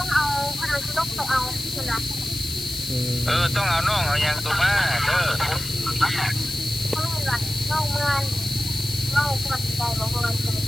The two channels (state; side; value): noise; left; hiss, 8 dB below the sound